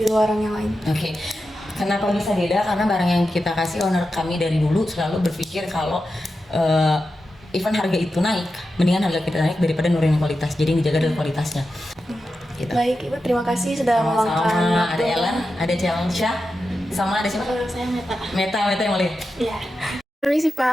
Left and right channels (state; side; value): normal; both; correlation 0.90